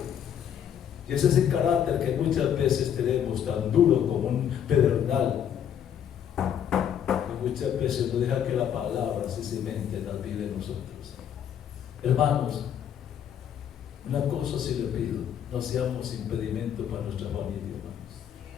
Y ese es el carácter que muchas veces tenemos tan duro como un pedernal, que muchas veces no deja que la palabra se cimente en la vida de nosotros. Hermanos, una cosa sí le pido: no seamos impedimento para nuestra familia, hermanos.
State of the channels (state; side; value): quieter; right; 9.2 dB